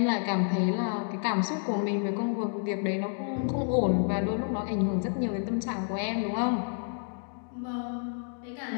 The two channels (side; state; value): right; silent; 57 dB below the other